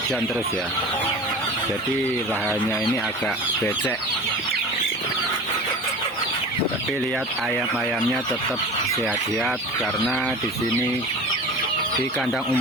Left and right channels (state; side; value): normal; both; correlation 0.36